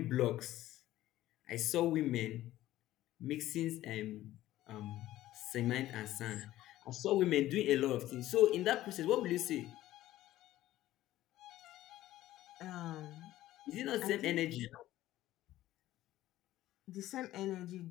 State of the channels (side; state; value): right; quieter; 14.8 dB